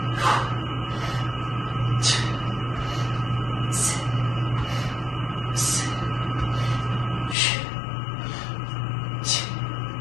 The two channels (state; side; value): drops out; right; at 7.4 s